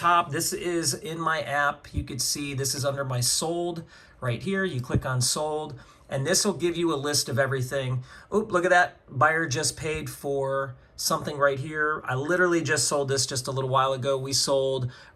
This is in my app. You could see this is under my sold right here. You click on sold, and this will give you a list of everything. Oh, look at that. Buyer just paid for something right here. I literally just sold this just a little while ago. We sold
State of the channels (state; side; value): identical; both; correlation 1.00